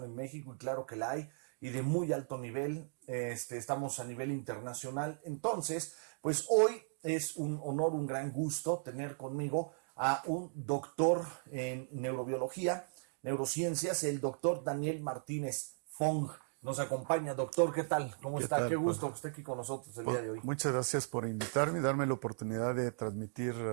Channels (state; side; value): silent; left; digital silence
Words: en México y claro que la hay, y de muy alto nivel. Estamos a nivel internacional. Entonces, pues hoy es un honor, un gran gusto tener conmigo a un doctor en neurobiología, neurociencias, el doctor Daniel Martínez Fong. Nos acompaña. Doctor, ¿qué tal? ¿Cómo ¿Qué está? tal, Qué Juan? gusto que esté aquí con nosotros el día de hoy. Muchas gracias por invitarme y darme la oportunidad de transmitir